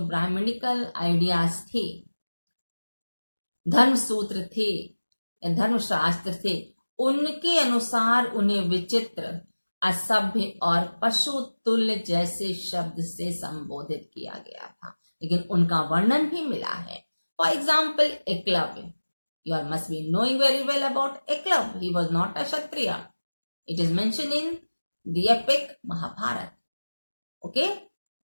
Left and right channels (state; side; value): inverted; both; correlation -1.00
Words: ब्राह्मणिकल आइडियाज थे, धर्म सूत्र थे, धर्मशास्त्र थे, उनके अनुसार उन्हें विचित्र, असभ्य और पशु तुल्य जैसे शब्द से संबोधित किया गया था, लेकिन उनका वर्णन भी मिला है। For example Eklavya, you all must be knowing very well about Eklavya. He was not a Kshatriya. It is mentioned in the epic Mahabharata. Okay?